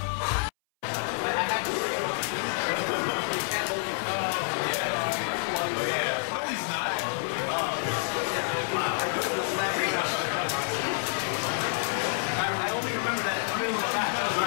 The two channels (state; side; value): silent; right; 59 dB below the other